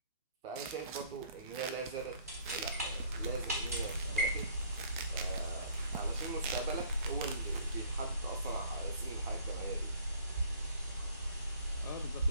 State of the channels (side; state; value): both; inverted; correlation -0.57